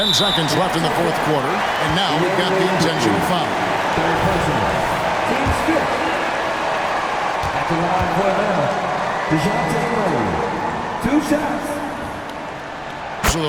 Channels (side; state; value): both; identical; correlation 1.00